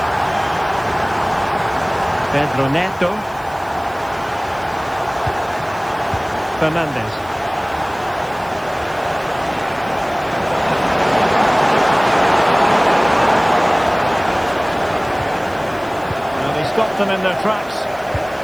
Pedro Neto. Fernandez. Well, they stopped them in their tracks.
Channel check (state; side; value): noise; right; hiss, 25 dB below the sound